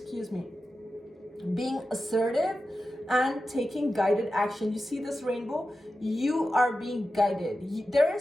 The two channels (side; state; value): both; normal; correlation 0.92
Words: me. Being assertive and taking guided action. You see this rainbow? You are being guided. There